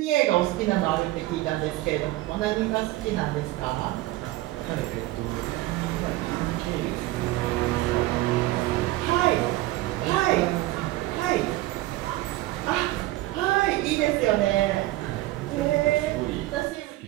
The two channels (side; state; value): left; quieter; 17.6 dB